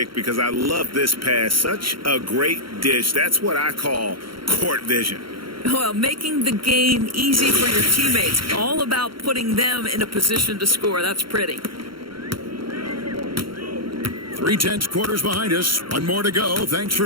because I love this pass. Such a great dish. That's what I call court vision. Well, making the game easy for your teammates. All about putting them in a position to score. That's pretty. 3/10 quarters behind us. One more to go. Thanks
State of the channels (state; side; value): late; left; 0.73 ms